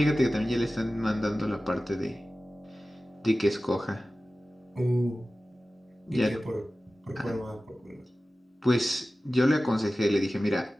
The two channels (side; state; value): both; normal; correlation 0.96